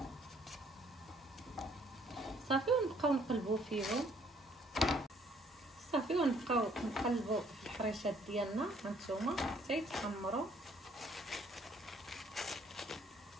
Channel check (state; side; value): normal; both; correlation 0.63